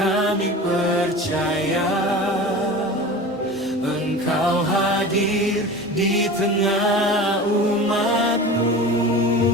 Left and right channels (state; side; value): noise; right; rumble, 29 dB below the sound